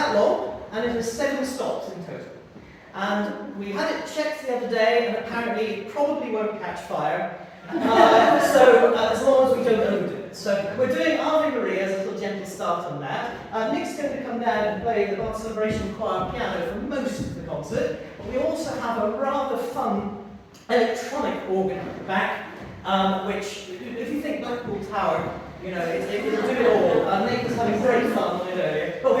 long, and it has 7 stops in total. And we had it checked the other day, and apparently it probably won't catch fire. As long as we don't overdo it. So we're doing Ave Maria as a little gentle start on that. Nick's going to come down and play the Bar Celebration Choir piano for most of the concert. We also have a rather fun electronic organ at the back, which, if you think Blackpool Tower, you know, it'll do it all. Nick was having great fun with it earlier. But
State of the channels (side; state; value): both; identical; correlation 1.00